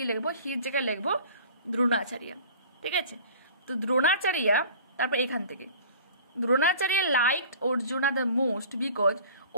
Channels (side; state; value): both; inverted; correlation -0.45